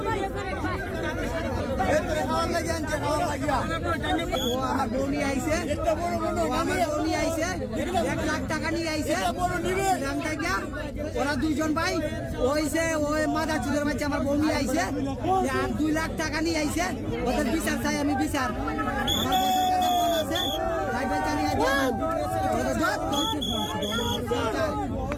ওরা দুইজন ভাই ওইছে ওই মাদার চুদের বাচ্চা আমার বউ নিয়ে আইছে আর 2 লাখ টাকা নিয়ে আইছে ওদের বিচার চাই আমি বিচার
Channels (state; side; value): identical; both; correlation 1.00